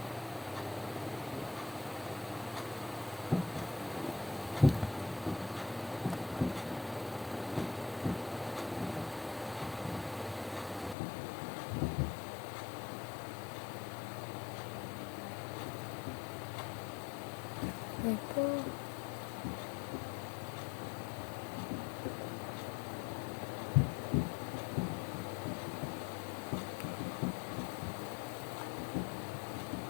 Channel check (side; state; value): right; drops out; at 11.0 s